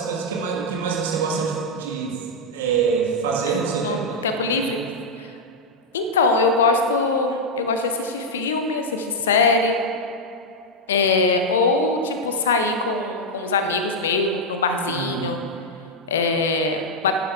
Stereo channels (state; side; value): normal; both; correlation -0.02